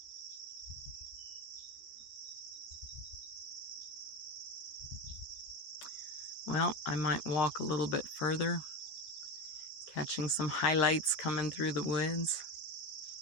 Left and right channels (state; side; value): late; right; 14 ms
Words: Well, I might walk a little bit further, catching some highlights coming through the woods.